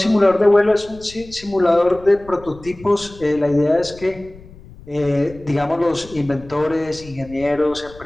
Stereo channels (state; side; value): noise; left; rumble, 20 dB below the sound